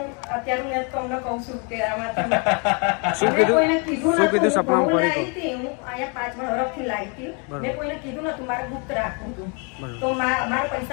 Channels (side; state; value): right; quieter; 35.0 dB